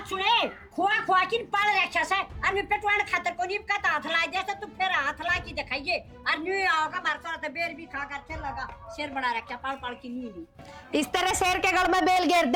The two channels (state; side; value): identical; both; correlation 1.00